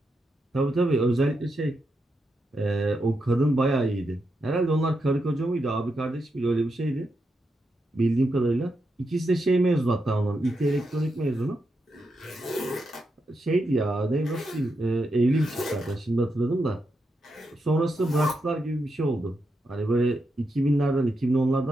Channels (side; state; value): both; normal; correlation 0.84